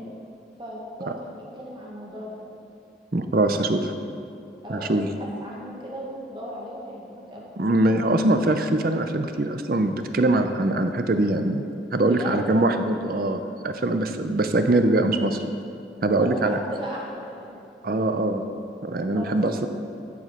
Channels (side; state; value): both; normal; correlation 0.52